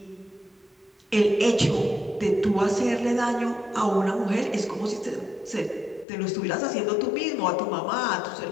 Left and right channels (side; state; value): right; drops out; at 6.1 s